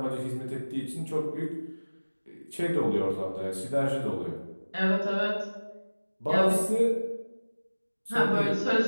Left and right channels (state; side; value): inverted; both; correlation -1.00